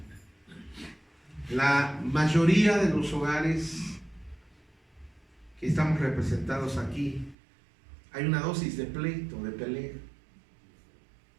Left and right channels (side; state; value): left; drops out; at 7.4 s